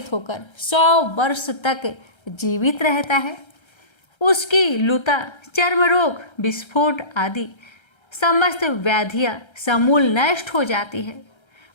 होकर 100 वर्ष तक जीवित रहता है। उसकी लुता, चर्म रोग, विस्फोट आदि समस्त व्याधियां समूल नष्ट हो जाती है।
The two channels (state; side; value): late; right; 1.3 ms